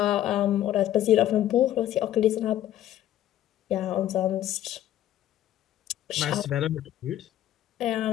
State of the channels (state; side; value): quieter; right; 12.6 dB